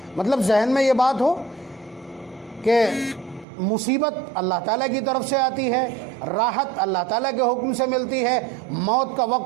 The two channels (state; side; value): drops out; left; at 3.5 s